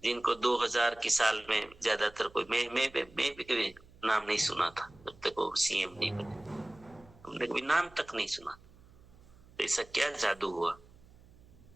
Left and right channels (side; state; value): right; noise; hum, 25 dB below the sound